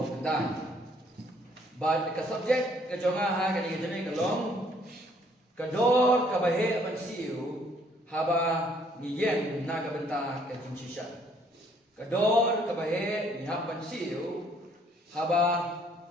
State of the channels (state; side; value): normal; both; correlation 0.64